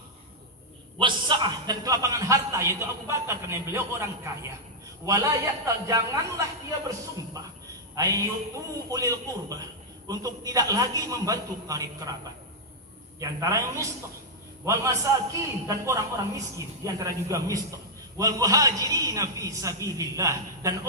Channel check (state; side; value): normal; both; correlation -0.05